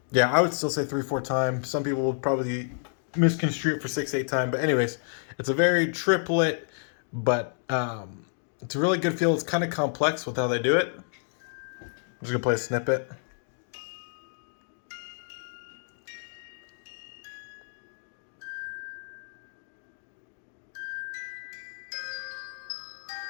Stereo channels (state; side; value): silent; right; digital silence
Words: yeah, I would still say 3/4 time. Some people would probably misconstrue it for 6/8 time, but anyways, it's a very triplet, but it's a really good feel. It's kind of complex with how they do it. I'm just gonna play a snippet.